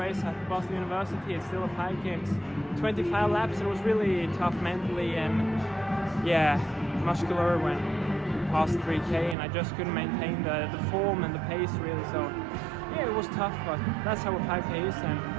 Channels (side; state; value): left; drops out; at 9.3 s